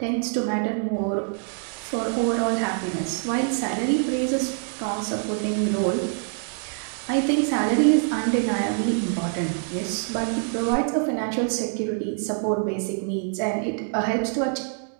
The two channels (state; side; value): silent; left; 56 dB below the other